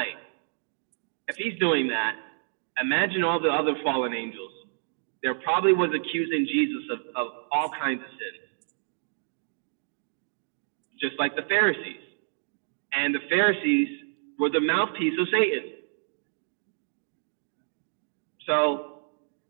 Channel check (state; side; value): silent; left; digital silence